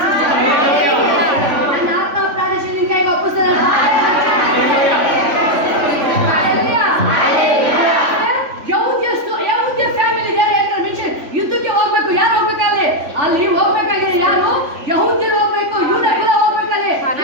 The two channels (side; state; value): left; late; 3.5 ms